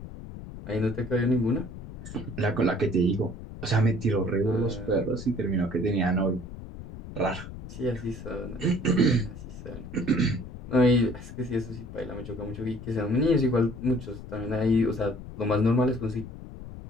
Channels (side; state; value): left; noise; rumble, 12 dB below the sound